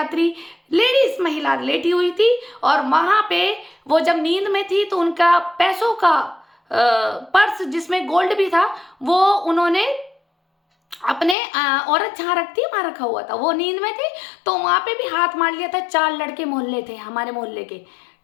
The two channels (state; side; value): drops out; right; at 11.4 s